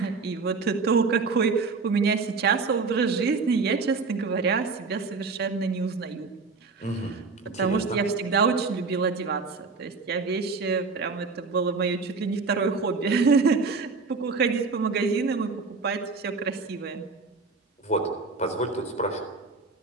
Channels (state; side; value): quieter; left; 4.4 dB